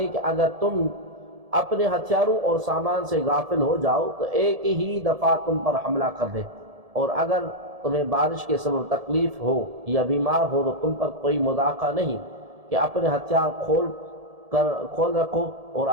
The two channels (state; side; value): late; left; 1.7 ms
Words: کہ اگر تم اپنے ہتھیاروں اور سامان سے غافل ہو جاؤ تو ایک ہی دفعہ تم پر حملہ کر دیں، اور اگر تمہیں بارش کے سبب تکلیف ہو یا بیمار ہو تو تم پر کوئی مذاقہ نہیں کہ اپنے ہتھیار کھول رکھو اور